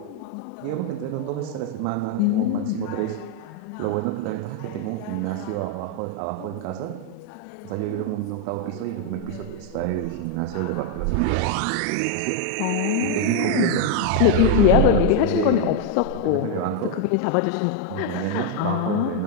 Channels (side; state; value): both; different; correlation 0.01